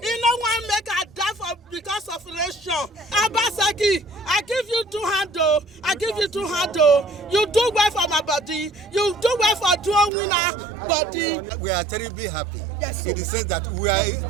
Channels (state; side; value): drops out; left; at 10.1 s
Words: know one make I die for because of election. Obaseki, I give you 2 handles. I give you 2 handles. You do well for my body. You do well for Idumwonwina body. We are terribly happy. Yes, in the sense that we are